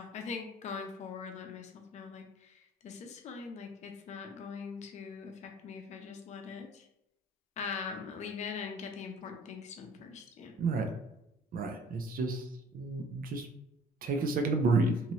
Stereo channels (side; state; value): both; normal; correlation 0.53